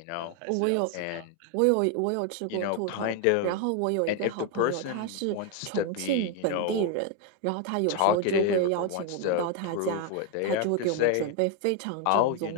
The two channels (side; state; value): both; different; correlation 0.01